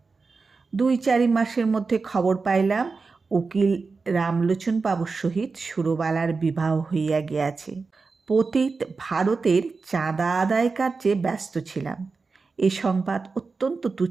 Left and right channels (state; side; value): quieter; left; 4.4 dB